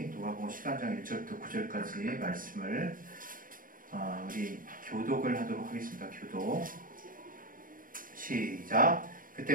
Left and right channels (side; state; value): left; late; 0.40 ms